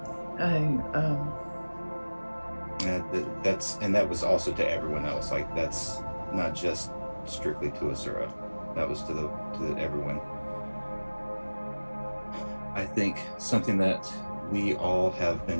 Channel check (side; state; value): both; inverted; correlation -1.00